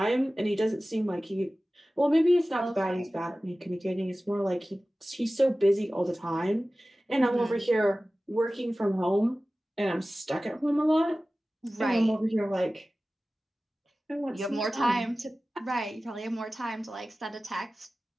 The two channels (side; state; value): both; normal; correlation 0.96